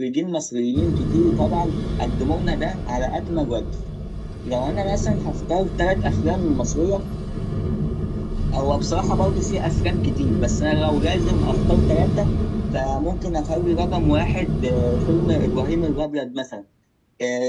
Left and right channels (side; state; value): both; identical; correlation 1.00